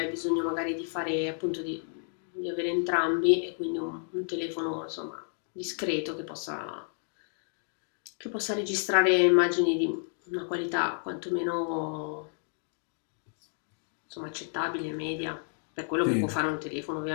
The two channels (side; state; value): right; silent; 57 dB below the other